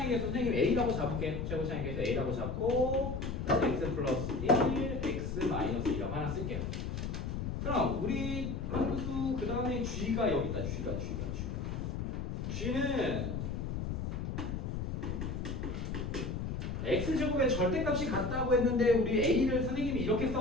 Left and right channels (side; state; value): left; noise; rumble, 3 dB below the sound